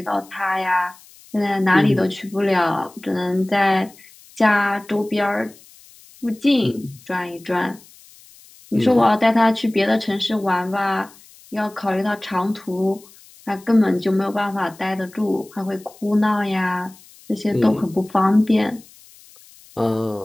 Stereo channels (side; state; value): left; noise; hiss, 24 dB below the sound